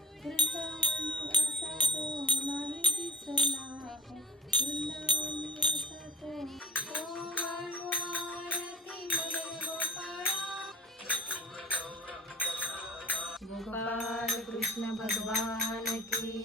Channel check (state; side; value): normal; both; correlation 0.42